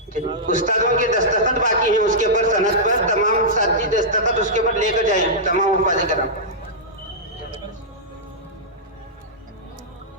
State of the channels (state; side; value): normal; both; correlation -0.13